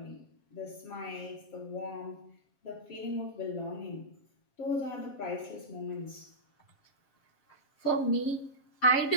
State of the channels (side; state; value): right; late; 7.5 ms